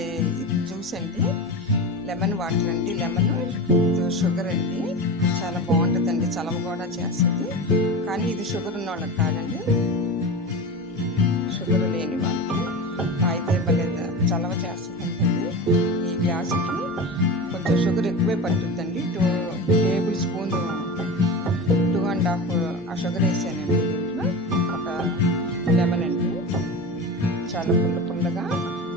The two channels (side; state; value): both; normal; correlation 0.27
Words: juice అండి, lemon water అండి. Lemon sugar అండి, చాలా బాగుంటుందండి. చలవ కూడా చేస్తుంది, కానీ ఇది షుగర్ ఉన్న వాళ్ళకి కాదండి. షుగర్ లేని వాళ్ళకి తాగితే భలే చలవ చేస్తుందండి. ఈ గ్లాసుకి కొంచెం షుగర్ ఎక్కువే పడుతుందండి. 2 టేబుల్ స్పూన్ 2.5 ఆ షుగర్ వేసానండి. దీంట్లో ఒక లెమన్ అండి, చాలా పుల్లగా